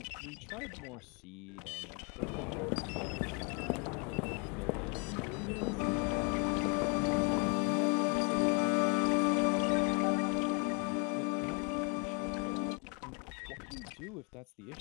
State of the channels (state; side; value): quieter; right; 34.6 dB